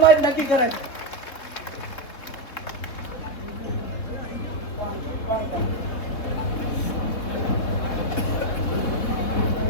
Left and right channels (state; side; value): late; right; 3.8 ms